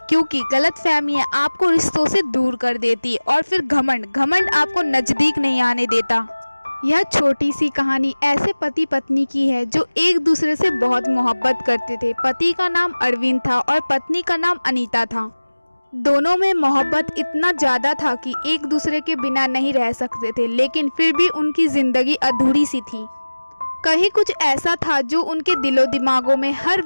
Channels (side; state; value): both; inverted; correlation -1.00